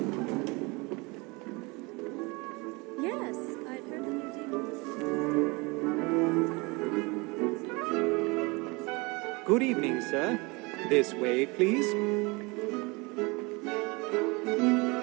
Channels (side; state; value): left; quieter; 26.6 dB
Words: Yes, I've heard the new demons. Good evening, sir. This way, please.